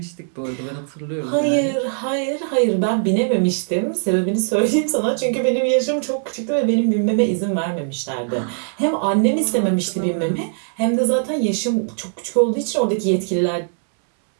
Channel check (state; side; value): silent; left; digital silence